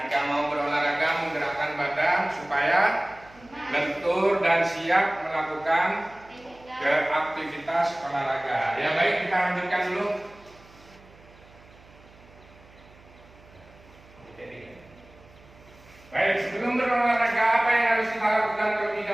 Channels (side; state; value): right; noise; hum, 25 dB below the sound